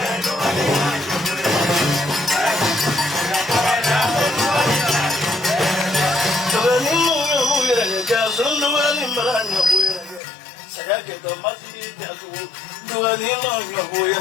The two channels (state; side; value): drops out; right; at 10.2 s